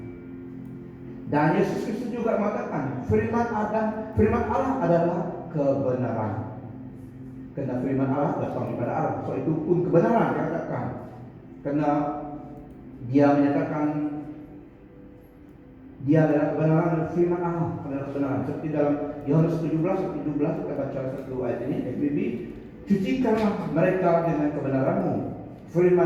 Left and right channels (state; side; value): identical; both; correlation 1.00